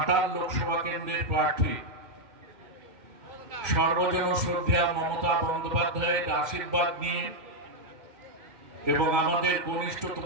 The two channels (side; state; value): left; late; 2.1 ms